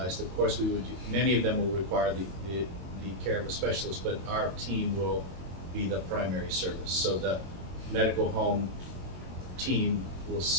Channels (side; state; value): left; late; 22 ms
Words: of course many of them will require the care of a specialist, but our team will be the primary service. So the medical home team will